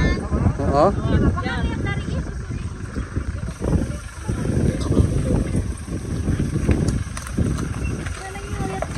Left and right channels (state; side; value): identical; both; correlation 1.00